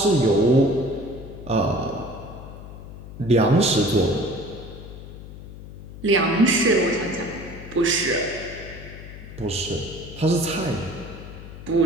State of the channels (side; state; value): left; noise; hum, 14 dB below the sound